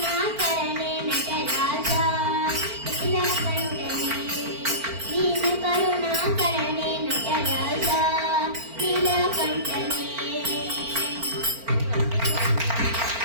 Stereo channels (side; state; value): left; late; 4.4 ms